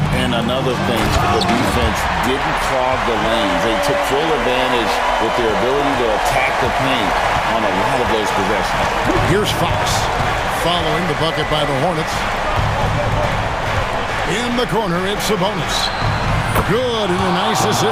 And another thing, the defense didn't clog the lanes. They took full advantage with their ability to attack the paint on a lot of those possessions. Here's Fox following the bucket by the Hornets. In the corner, it's Sabonis. Good, and a nice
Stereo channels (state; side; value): identical; both; correlation 1.00